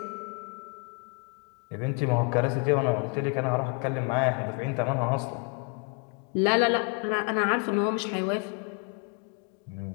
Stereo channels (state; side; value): quieter; right; 32.4 dB